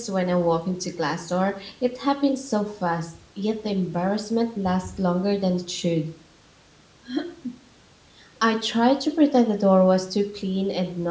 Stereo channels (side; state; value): both; identical; correlation 1.00